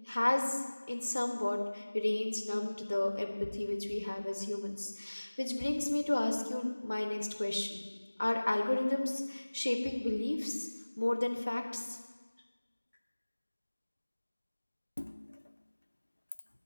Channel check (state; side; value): inverted; both; correlation -1.00